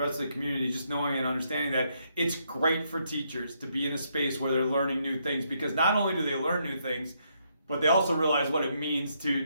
of the community, just knowing and understanding that it's great for teachers to be in a space where they're learning new things, because not only do they learn new things, but they also realize what it means to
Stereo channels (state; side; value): inverted; both; correlation -0.75